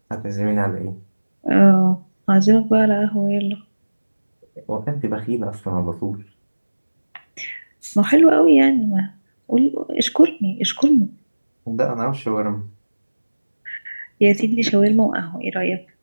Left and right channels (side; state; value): both; inverted; correlation -1.00